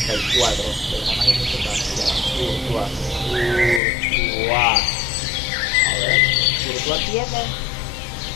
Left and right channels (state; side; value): drops out; right; at 3.8 s